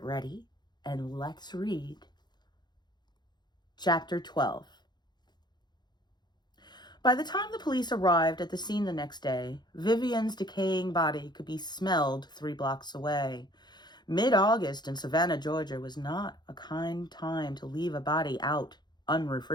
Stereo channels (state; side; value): late; right; 0.21 ms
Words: ready, and let's read Chapter 12. By the time the police arrived at the scene the next day, Vivian's decaying body could be smelled 3 blocks away. Mid-August in Savannah, Georgia was not a kind time to leave a body out